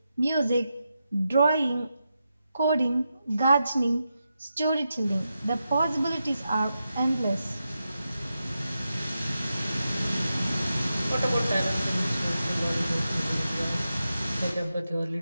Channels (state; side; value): inverted; both; correlation -0.88